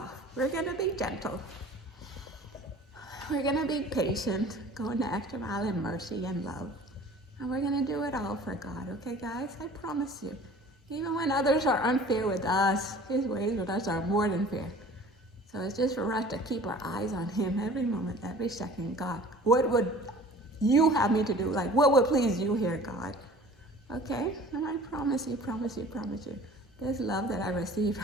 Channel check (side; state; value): both; normal; correlation 0.45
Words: We're going to be gentle. We're going to be patient, going the extra mile in mercy and love. And we're going to do it all for God. Okay, guys? I promise you. Even when others are unfair with us, His ways with us are more than fair. So it's just for us to keep our eyes on Him every moment, every second. God, what would you have me to do? Like, what would please you here, God? Okay? And I promise you, this love that I receive